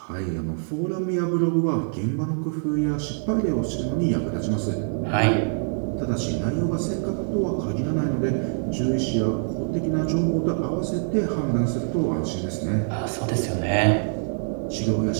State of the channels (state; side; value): silent; left; digital silence